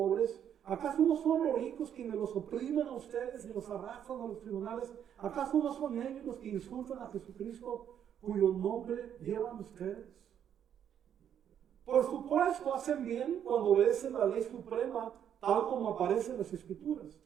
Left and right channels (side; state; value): left; quieter; 9.3 dB